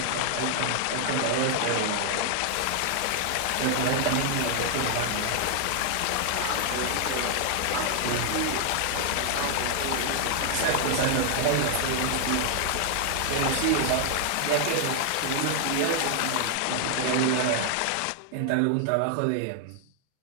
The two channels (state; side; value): different; both; correlation 0.00